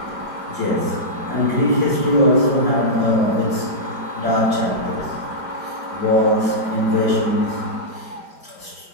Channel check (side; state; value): left; late; 5.0 ms